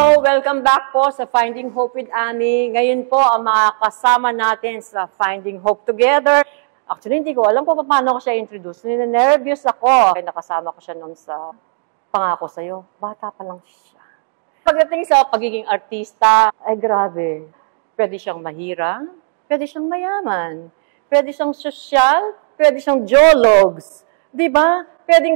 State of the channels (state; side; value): silent; left; digital silence